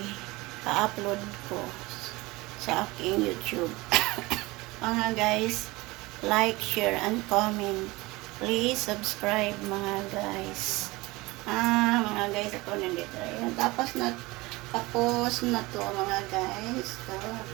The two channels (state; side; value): quieter; left; 21.9 dB